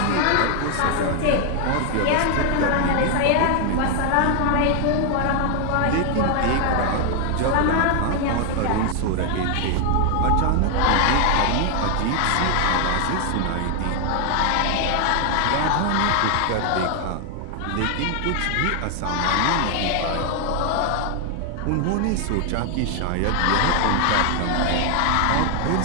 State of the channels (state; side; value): different; both; correlation 0.00